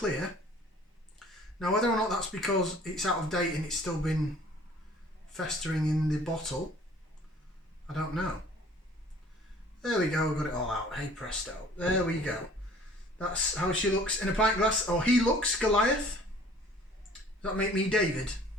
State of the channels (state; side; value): normal; both; correlation 0.52